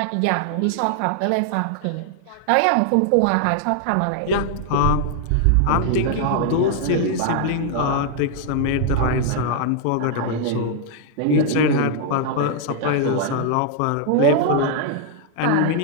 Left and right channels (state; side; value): different; both; correlation 0.00